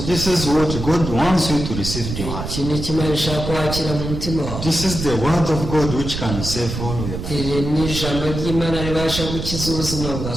this is what God wants you to receive in your heart. iki ni kimwe ishaka ko wakira mu mutima wawe. This is the word of God which can save all your life. iri ni ijambo ry'Imana ribasha gukiza ubuzima bwawe.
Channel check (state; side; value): noise; right; rumble, 6 dB below the sound